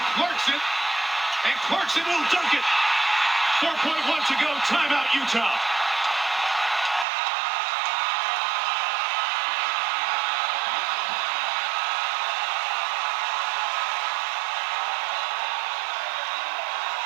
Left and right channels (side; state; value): left; drops out; at 7.1 s